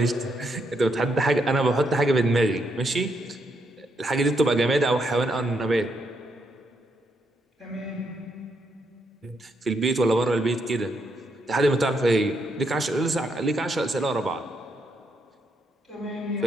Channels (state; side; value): normal; both; correlation 0.77